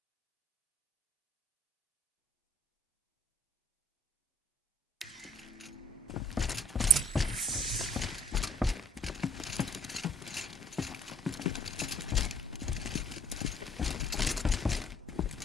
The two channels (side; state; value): both; normal; correlation 0.57